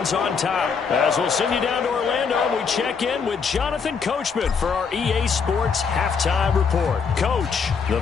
on top. As we'll send you down to Orlando, we check in with Jonathan Coachman for our EA Sports Halftime Report. Coach, the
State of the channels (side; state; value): right; quieter; 5.8 dB